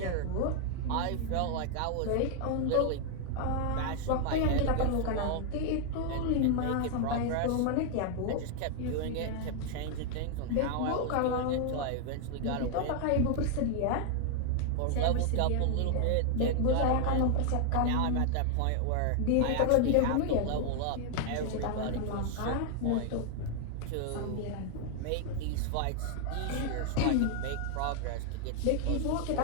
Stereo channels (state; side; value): different; both; correlation 0.00